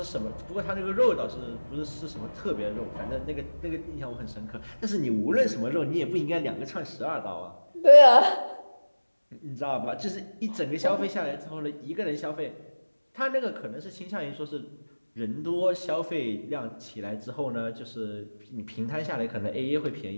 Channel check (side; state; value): both; inverted; correlation -1.00